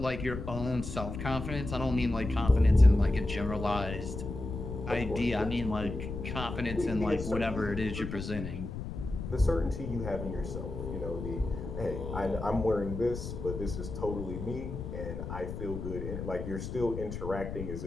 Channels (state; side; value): noise; left; rumble, 7 dB below the sound